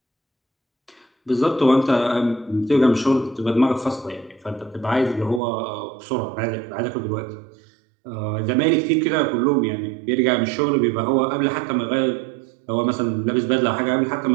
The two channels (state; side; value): drops out; left; at 5.4 s